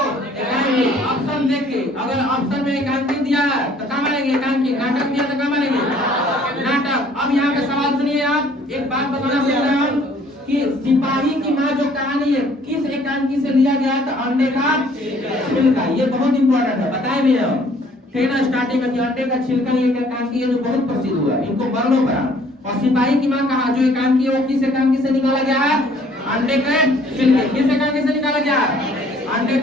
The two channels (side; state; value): both; normal; correlation 0.58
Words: ऑप्शन देख के, अगर ऑप्शन में एकांकी दिया है तो कहाँ मानेंगे? एकांकी। नाटक दिया तो कहाँ मानेंगे? नाटक। अब यहाँ पे सवाल सुनिए, आप एक बात बताना भूल रहे हैं कि सिपाही की माँ जो कहानी है किस एकांकी से लिया गया था? अंडे का छिलका। ये बहुत इंपॉर्टेंट है, बताए भी हम, ठीक ना, स्टार्टिंग में कि अंडे का छिलका ये एकांकी है जो बहुत प्रसिद्ध हुआ, इनको वर्णों पर। और सिपाही की माँ कहा जो एकांकी है वो किस एकांकी से निकाला गया है? अंडे के छिलके। किस एकांकी से निकाला गया? अंडे